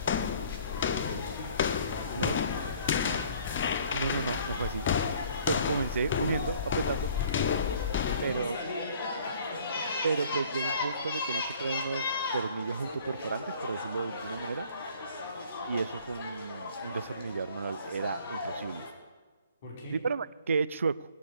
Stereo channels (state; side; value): inverted; both; correlation -0.55